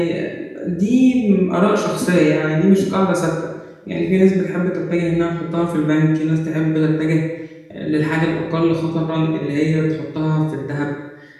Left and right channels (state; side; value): identical; both; correlation 1.00